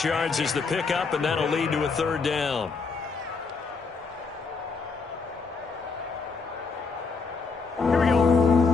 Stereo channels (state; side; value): quieter; right; 4.6 dB